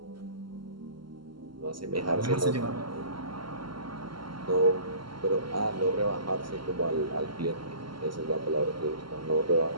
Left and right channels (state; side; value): late; left; 0.73 ms